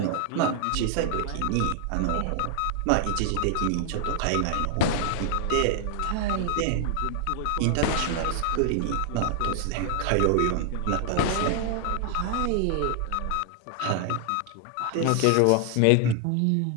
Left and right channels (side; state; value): both; different; correlation 0.00